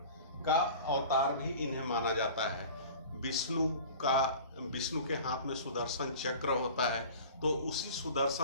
का अवतार भी इन्हें माना जाता है। विष्णु के हाथ में सुदर्शन चक्र होता है, तो उसी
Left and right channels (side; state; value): both; inverted; correlation -0.41